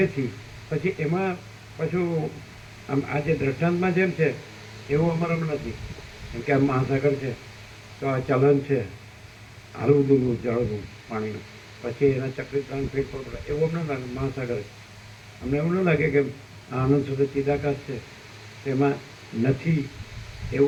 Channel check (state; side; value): identical; both; correlation 1.00